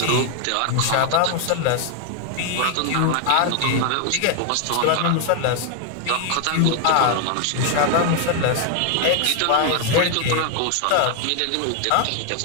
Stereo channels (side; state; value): both; different; correlation 0.00